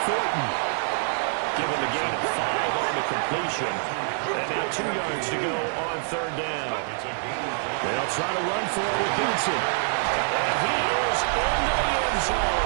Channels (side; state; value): left; silent; 61 dB below the other